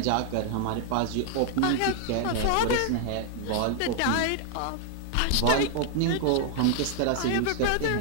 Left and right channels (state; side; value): different; both; correlation 0.00